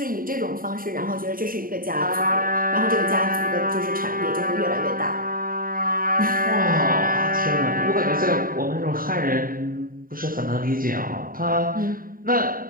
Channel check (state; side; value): late; left; 0.41 ms